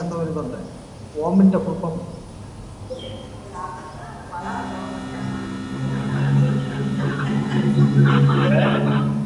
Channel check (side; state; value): both; identical; correlation 1.00